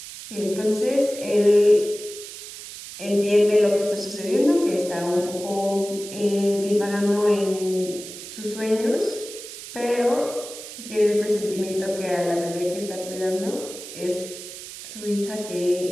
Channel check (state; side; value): noise; right; hiss, 12 dB below the sound